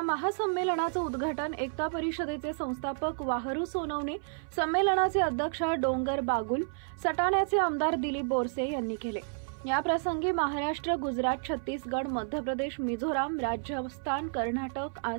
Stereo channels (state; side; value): silent; left; 57 dB below the other